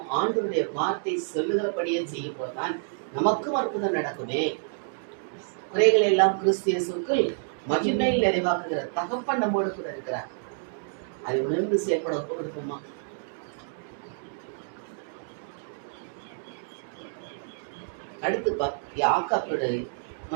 ஆண்டவருடைய வார்த்தை சொல்லுகிறபடியே செய்யும் போதுதான் நமக்கும் அற்புதம் நடக்குமே. குறைகளை எல்லாம் கிறிஸ்து இயேசுவுக்குள் மகிமையில் நிறைவாக்குகிற தகப்பன் நம்மோடு கூட இருக்கிறார். அதை உணர்ந்து செயல்பட ஒப்பு கொடுப்போமா? அடுத்து யாக்காப்புடைய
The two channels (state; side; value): silent; left; digital silence